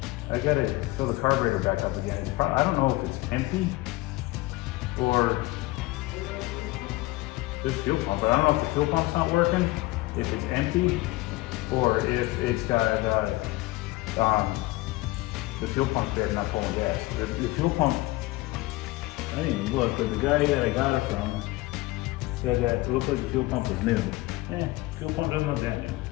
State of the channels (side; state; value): right; quieter; 20.0 dB